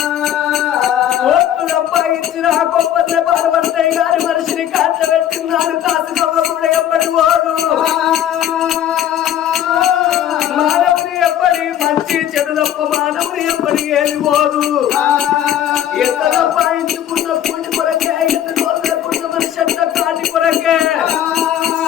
ఒట్టు సంపాదించిన గొప్ప పార్వతయ్య గారి మనిషిని కాల్చబెట్టినాడు. కాసుకవ్వ కూడా ఎప్పటి వాడు మానవుని ఎప్పటి మంచి చెడు తప్ప మానవుని ఎప్పటి ఏది పోదు. ఎంత సంపాదించుకున్న పూజ కొరకే ఎంత కోరుకున్న మనిషి అంత కాటి కొరకే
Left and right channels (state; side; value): quieter; right; 10.9 dB